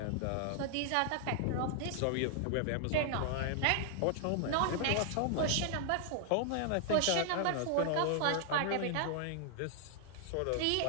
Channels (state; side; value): different; both; correlation 0.00